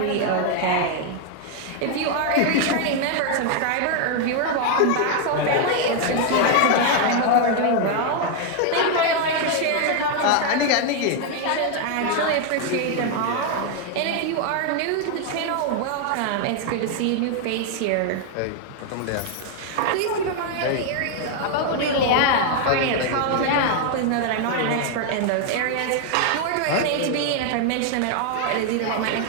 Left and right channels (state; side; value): different; both; correlation 0.00